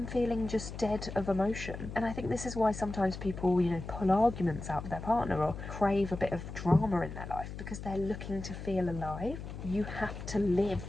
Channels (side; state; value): left; noise; hum, 9 dB below the sound